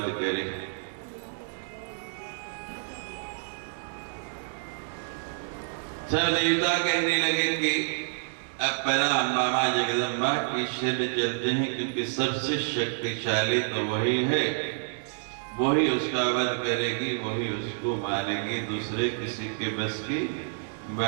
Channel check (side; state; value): left; silent; 59 dB below the other